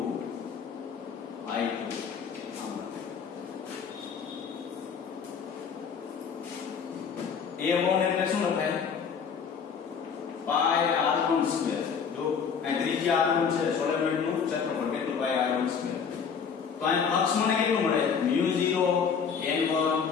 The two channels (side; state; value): right; quieter; 6.5 dB